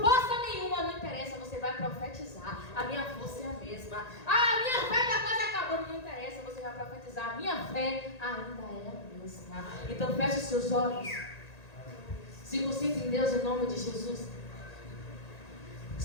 nenhuma. Não interessa, você vai profetizar: a minha força é a mesma. Ah, a minha fé está quase acabando. Não interessa, você vai profetizar: a minha fé ainda é a mesma. Então feche os seus olhos, se concentre em Deus em nome de Jesus.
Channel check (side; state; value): right; late; 1.9 ms